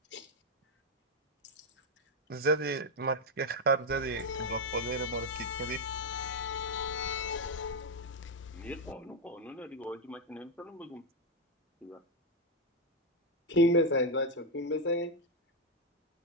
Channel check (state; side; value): normal; both; correlation 0.04